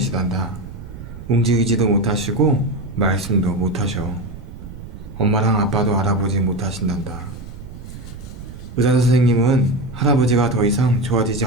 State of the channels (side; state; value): right; noise; rumble, 13 dB below the sound